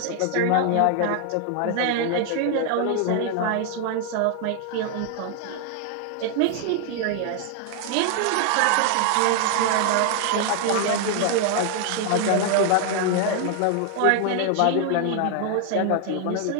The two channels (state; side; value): different; both; correlation 0.00